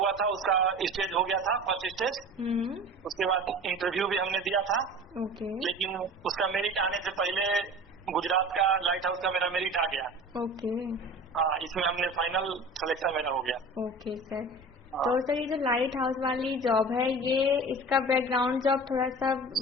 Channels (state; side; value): normal; both; correlation 0.38